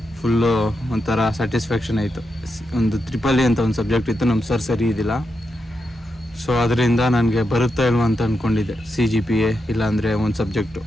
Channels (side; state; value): both; normal; correlation 0.86